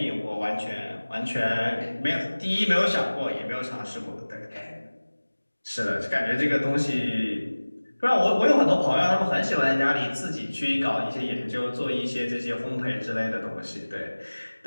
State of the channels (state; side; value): inverted; both; correlation -1.00